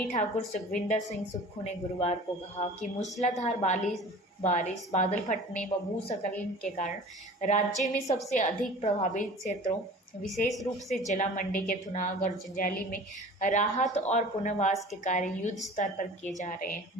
ठाकुर सुखविंदर सिंह सुक्खू ने गुरुवार को कहा कि मूसलाधार बारिश, बादल फटने व भूस्खलन के कारण राज्य में सबसे अधिक प्रभावित क्षेत्रों, विशेष रूप से जिला मंडी के थुनाग और जंजैली में राहत और पुनर्वास के कार्य युद्ध स्तर पर किए जा रहे हैं।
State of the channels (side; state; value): both; normal; correlation 0.42